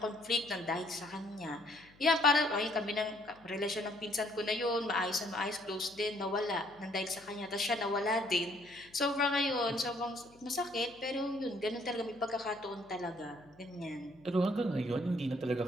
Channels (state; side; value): noise; left; hum, 27 dB below the sound